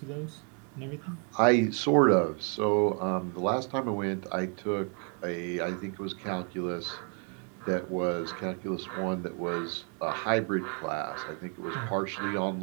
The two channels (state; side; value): quieter; left; 39.1 dB